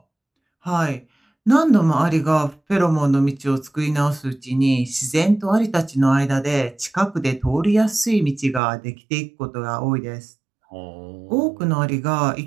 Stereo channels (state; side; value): drops out; left; at 8.6 s